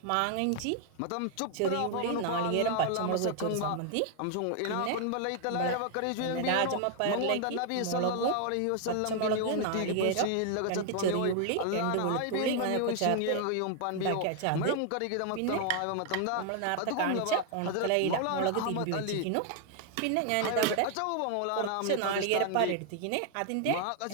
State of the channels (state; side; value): different; both; correlation 0.00